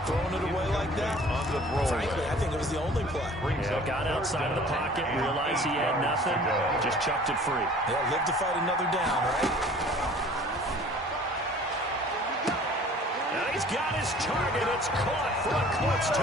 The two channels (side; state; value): both; normal; correlation 0.49